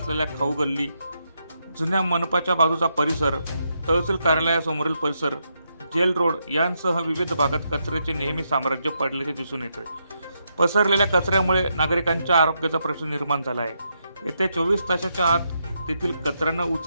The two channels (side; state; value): both; inverted; correlation -0.81